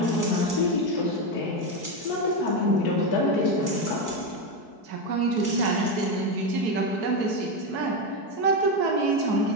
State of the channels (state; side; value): late; right; 4.6 ms